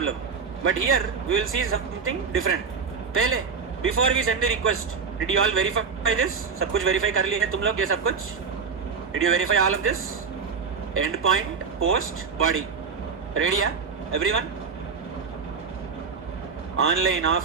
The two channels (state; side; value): quieter; left; 5.6 dB